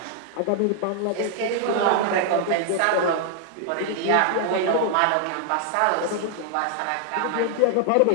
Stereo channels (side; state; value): both; different; correlation 0.00